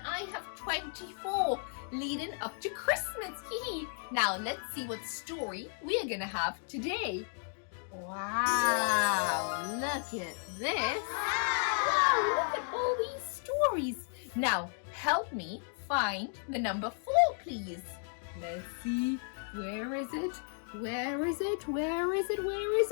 have 24 leading up to Christmas. Now, let's see what story we are going to have today. Wow, look at this. Wow, look at all these stories. Now, help me find the number 4, please. Let's see. Where is it? Where is it? Where is it? Where is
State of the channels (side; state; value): right; silent; 55 dB below the other